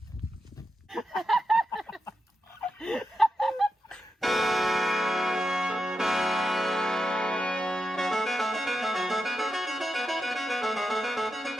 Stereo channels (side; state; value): both; normal; correlation 0.88